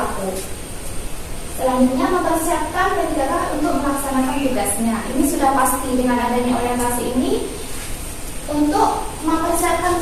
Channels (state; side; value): identical; both; correlation 1.00